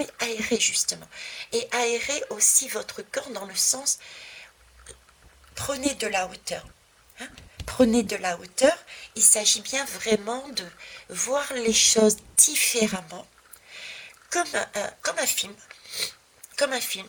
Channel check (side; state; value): both; identical; correlation 1.00